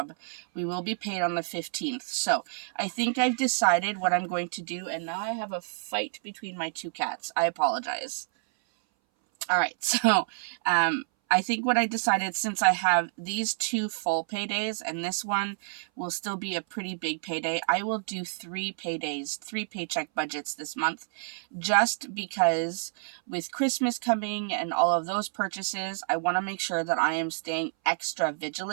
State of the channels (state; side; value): silent; left; 59 dB below the other